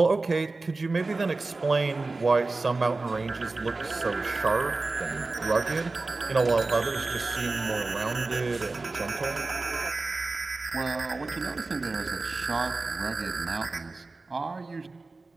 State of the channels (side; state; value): left; quieter; 3.5 dB